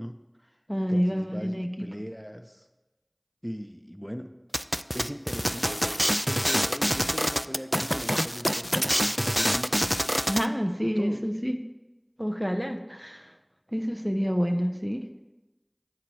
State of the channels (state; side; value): identical; both; correlation 1.00